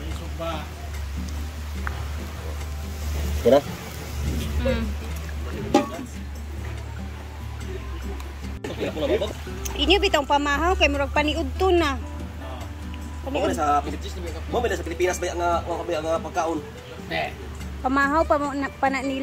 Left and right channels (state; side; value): identical; both; correlation 1.00